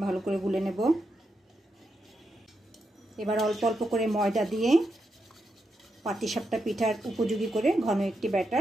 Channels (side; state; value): both; normal; correlation 0.84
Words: ভালো করে গুলে নেব। এবার অল্প অল্প করে ময়দা দিয়ে পাটিসাপটা পিঠার উপযোগী করে ঘন একটি